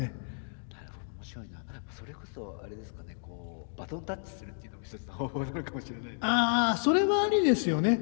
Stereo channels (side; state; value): right; silent; digital silence